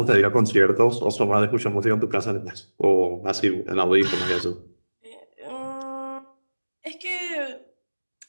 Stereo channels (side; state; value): both; inverted; correlation -1.00